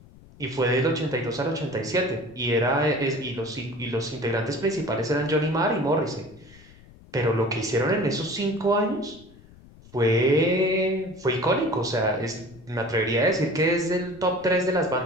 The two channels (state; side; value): noise; left; rumble, 23 dB below the sound